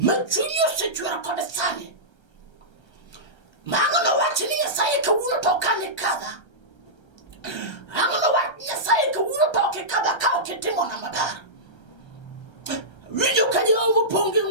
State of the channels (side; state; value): right; late; 1.3 ms